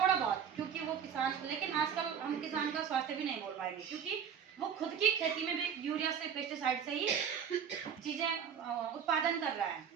बहुत, क्योंकि वो किसान, लेकिन आजकल हम किसान का स्वास्थ्य भी नहीं बोल पाएंगे, क्योंकि वो खुद की खेती में भी यूरिया से, पेस्टिसाइड से ही चीजें उत्पादन कर रहा है।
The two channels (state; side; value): quieter; left; 7.8 dB